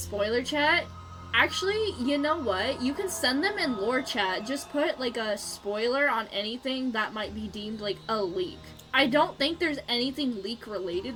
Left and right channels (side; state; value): both; identical; correlation 1.00